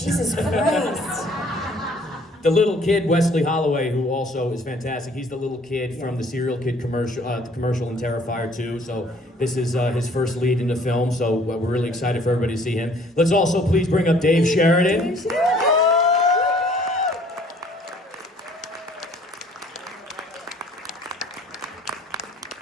Jesus Christ. The little kid, Wesley Holloway, who also is fantastic. He's the little kid from the Serial Kid commercial, the commercial in Terrifier 2. So this is his first lead in the film. So we're really excited for everybody to see him. Let's also please bring up Dave Sheridan. Dave Sheridan.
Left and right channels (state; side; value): normal; both; correlation 0.57